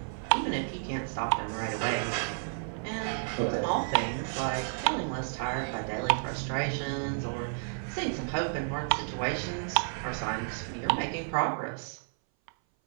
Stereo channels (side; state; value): left; silent; 57 dB below the other